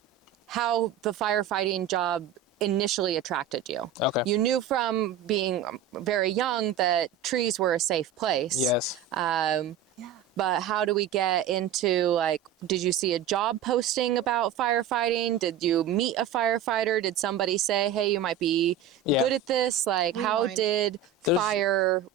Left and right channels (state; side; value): quieter; left; 8.1 dB